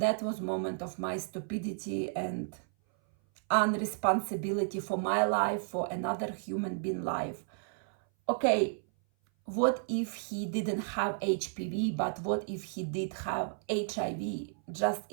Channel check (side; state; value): left; silent; 56 dB below the other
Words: that was moment of my stupidity and unresponsibility for my life, for another human being life. Okay, what if he didn't have HPV, but what if he did have HIV? Just